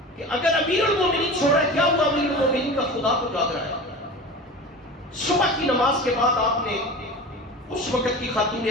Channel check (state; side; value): normal; both; correlation 0.33